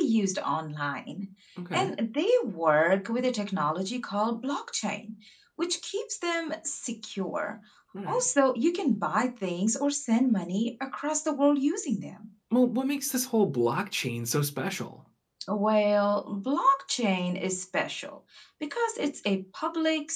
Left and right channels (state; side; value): identical; both; correlation 1.00